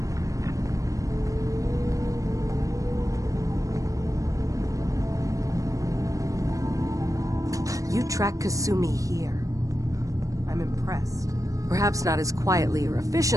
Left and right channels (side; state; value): left; late; 0.16 ms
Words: You track Kasumi here. I'm impressed. Perhaps not as quietly or